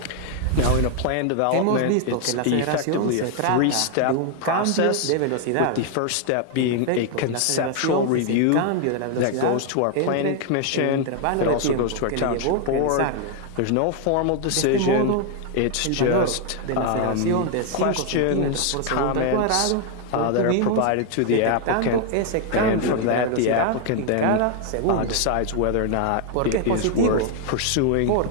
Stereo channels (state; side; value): different; both; correlation 0.00